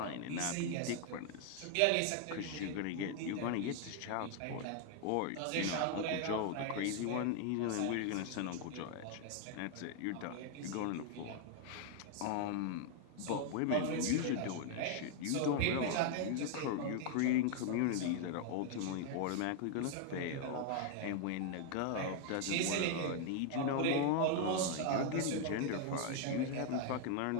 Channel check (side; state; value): both; different; correlation 0.00